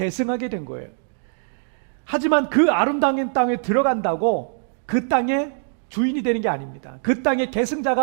된 거예요. 하지만 그 아름다운 땅에 들어간다고 그 땅의 주인이 되는 게 아닙니다. 그 땅의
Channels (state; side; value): silent; left; digital silence